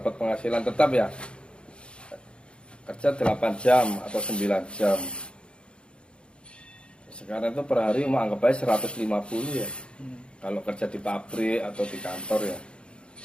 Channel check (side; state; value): right; late; 0.056 ms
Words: penghasilan tetap ya, kerja 8 jam atau 9 jam. Sekarang itu per hari mau anggap aja 150 ya. Kalau kerja di pabrik atau di kantor ya.